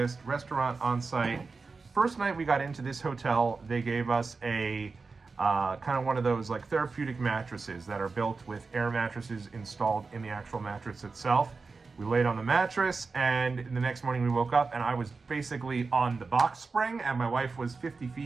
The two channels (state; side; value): quieter; left; 4.3 dB